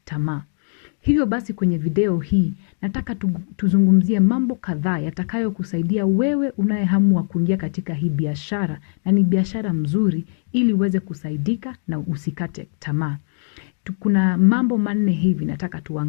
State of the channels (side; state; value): right; silent; 59 dB below the other